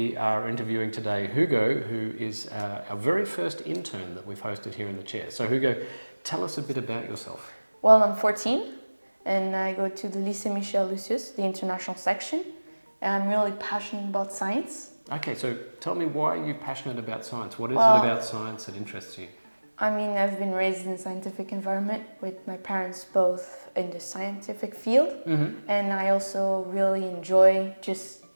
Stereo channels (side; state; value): both; inverted; correlation -1.00